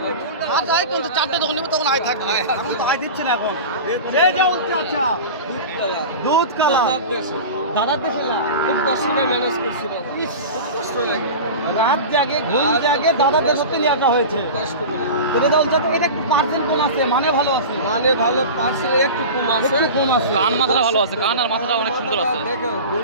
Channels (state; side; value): inverted; both; correlation -0.31